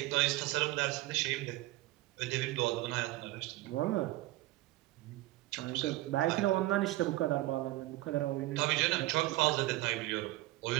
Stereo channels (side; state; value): left; quieter; 18.0 dB